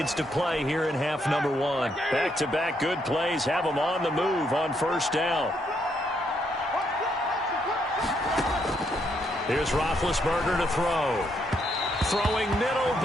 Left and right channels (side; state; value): both; normal; correlation 0.75